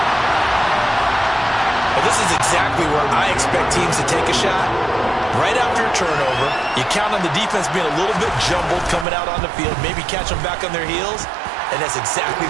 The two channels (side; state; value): left; drops out; at 9.1 s